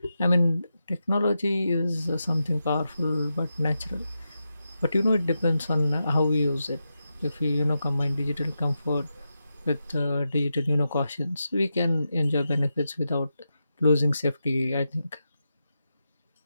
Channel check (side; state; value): both; inverted; correlation -0.89